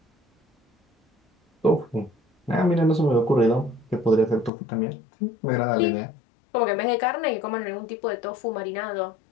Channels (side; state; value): right; drops out; at 4.5 s